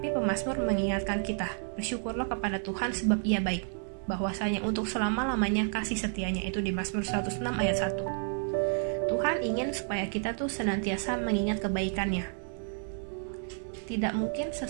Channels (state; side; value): silent; left; 57 dB below the other